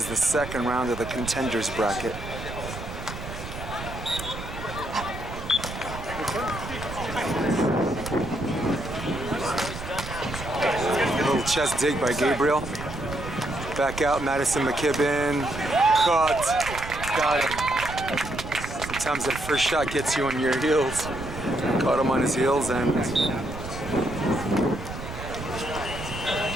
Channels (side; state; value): right; noise; rumble, 10 dB below the sound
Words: the second round of the Contenders bracket. Little chest dig by Gabriel. Back out, Maddison, McKibbin. Cut. Got him. Sometimes that first shot gets you on your heels. Caught him on his heels and